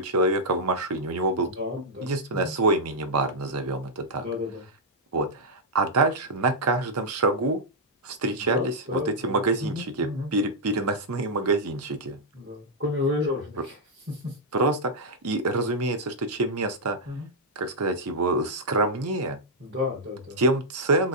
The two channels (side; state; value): both; normal; correlation -0.06